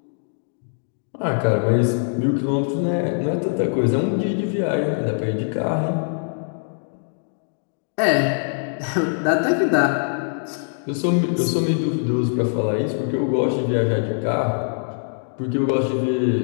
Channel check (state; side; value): silent; right; digital silence